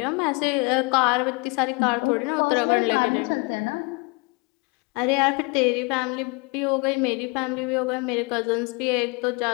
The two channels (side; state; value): right; quieter; 29.9 dB